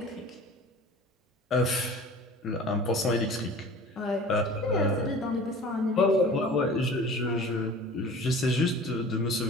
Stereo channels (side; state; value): both; normal; correlation 0.42